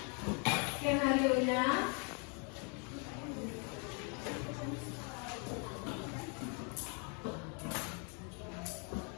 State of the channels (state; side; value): quieter; right; 36.9 dB